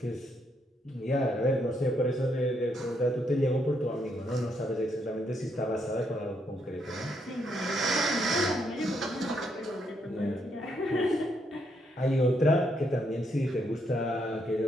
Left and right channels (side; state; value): both; normal; correlation 0.76